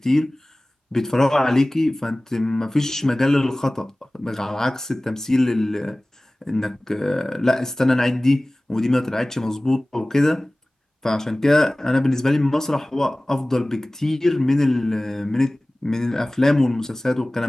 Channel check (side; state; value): both; normal; correlation 0.98